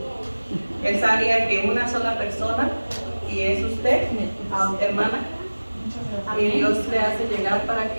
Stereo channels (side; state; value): both; inverted; correlation -1.00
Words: Él sabía que una sola persona, y es usted, hermana, y Dios le hace llegar para